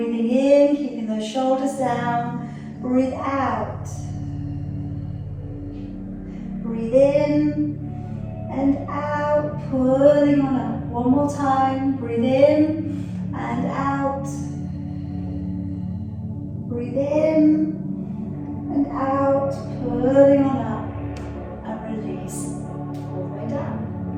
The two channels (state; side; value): identical; both; correlation 1.00